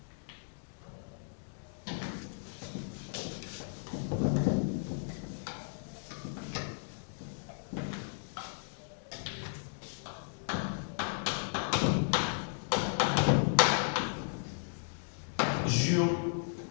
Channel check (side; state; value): right; silent; digital silence